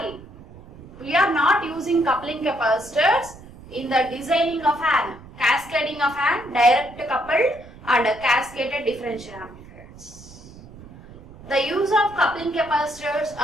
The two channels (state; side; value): noise; right; rumble, 19 dB below the sound